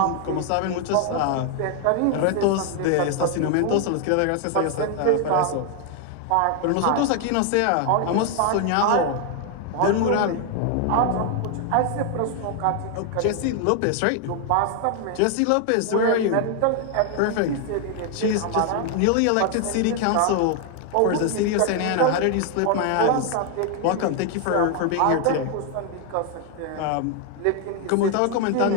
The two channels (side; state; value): both; different; correlation 0.00